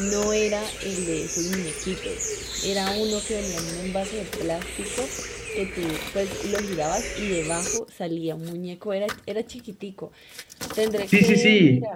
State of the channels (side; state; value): both; identical; correlation 1.00